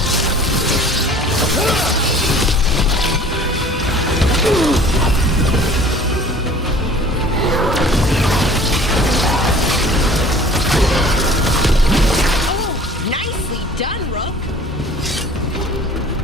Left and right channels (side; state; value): both; normal; correlation 0.48